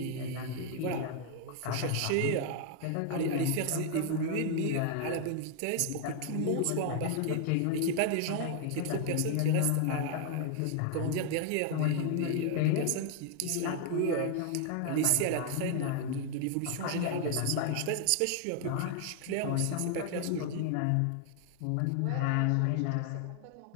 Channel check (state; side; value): different; both; correlation 0.00